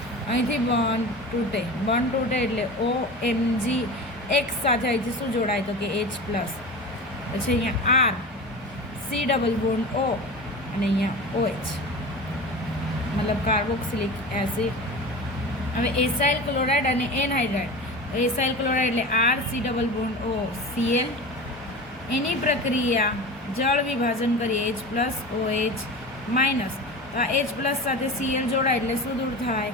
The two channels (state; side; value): normal; both; correlation 0.31